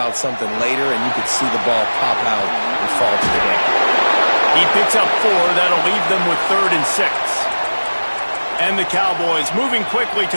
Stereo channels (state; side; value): inverted; both; correlation -1.00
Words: something later, and you could see the ball pop out and fall to the ground. He picks up 4. That'll leave them with 3rd and 6. And the Cowboys moving quickly